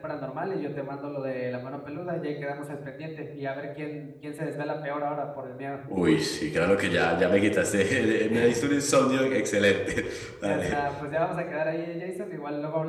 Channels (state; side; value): identical; both; correlation 1.00